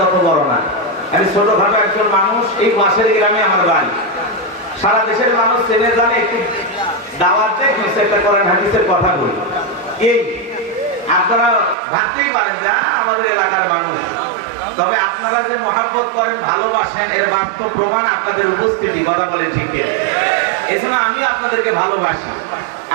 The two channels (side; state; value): left; drops out; at 11.8 s